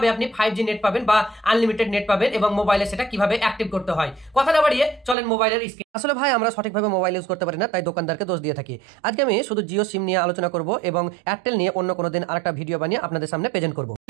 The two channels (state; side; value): drops out; left; at 5.2 s